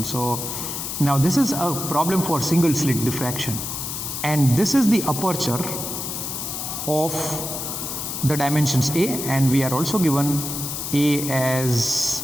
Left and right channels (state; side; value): noise; left; hiss, 5 dB below the sound